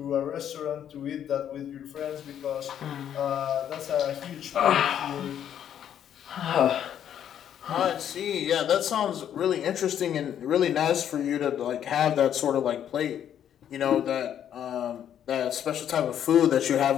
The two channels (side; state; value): right; quieter; 9.8 dB